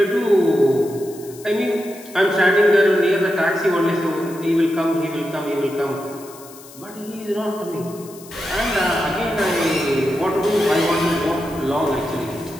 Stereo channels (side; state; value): left; noise; hiss, 20 dB below the sound